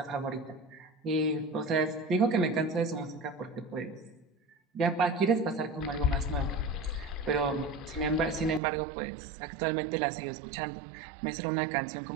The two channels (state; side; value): drops out; left; at 8.6 s